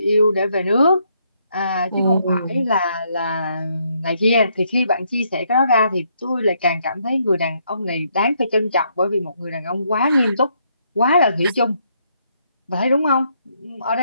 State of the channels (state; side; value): inverted; both; correlation -0.73